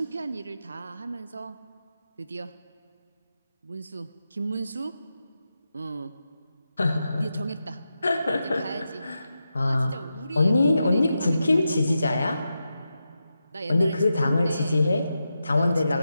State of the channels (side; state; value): both; inverted; correlation -0.89